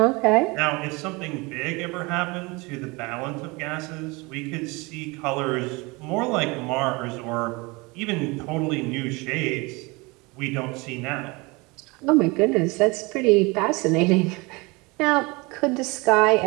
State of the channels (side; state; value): left; quieter; 25.7 dB